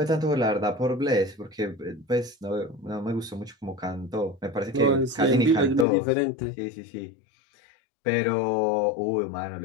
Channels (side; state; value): right; drops out; at 5.9 s